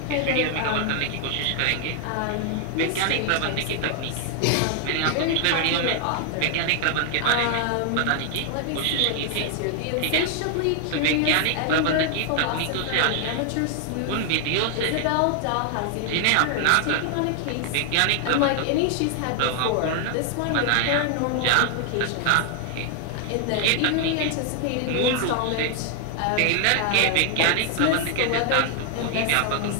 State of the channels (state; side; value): different; both; correlation 0.00